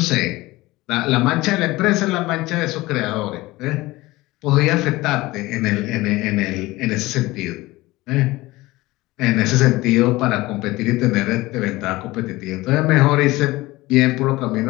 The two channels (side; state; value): right; quieter; 19.6 dB